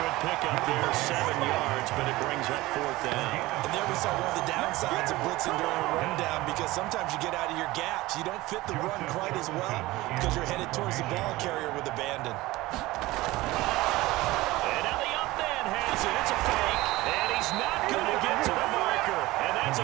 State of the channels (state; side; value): quieter; left; 19.1 dB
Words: pickup there, 7 yards, but it brings up 4th down. And there we saw one of the downsides of blitzing during a rundown, because sometimes you get out of your gaps. You don't fit the run quite as well because you're headed towards the ball carrier with abandon. And Elliott then has it. It's a fake, and he's not going to get to It's